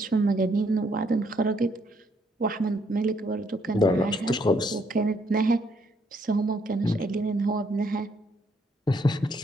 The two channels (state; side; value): normal; both; correlation 0.70